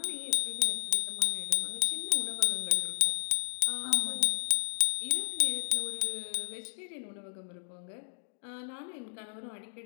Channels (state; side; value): silent; right; digital silence